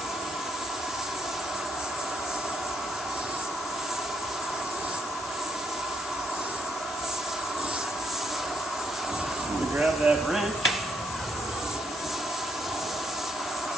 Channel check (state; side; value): noise; left; hiss, 10 dB below the sound